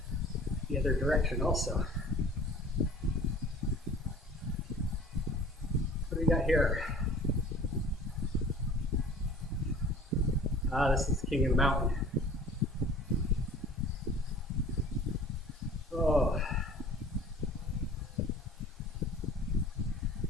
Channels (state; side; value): normal; both; correlation 0.46